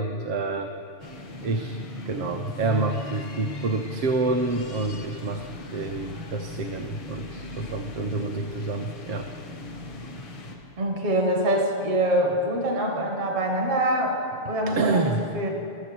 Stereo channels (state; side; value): late; left; 6.9 ms